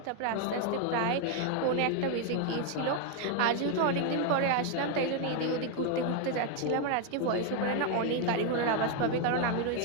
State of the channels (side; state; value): both; different; correlation 0.01